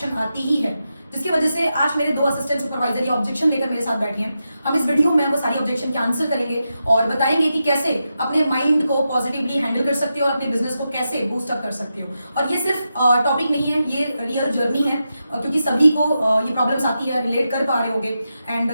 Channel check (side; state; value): both; inverted; correlation -0.88